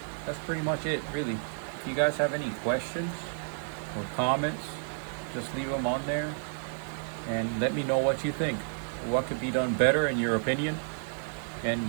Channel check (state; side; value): silent; left; digital silence